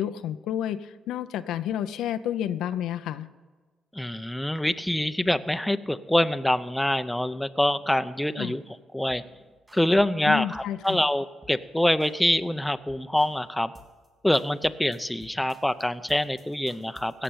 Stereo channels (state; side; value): normal; both; correlation 0.95